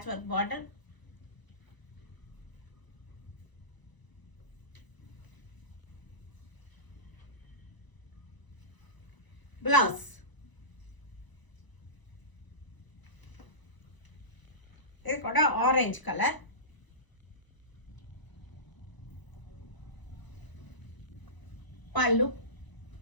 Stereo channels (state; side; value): late; right; 1.0 ms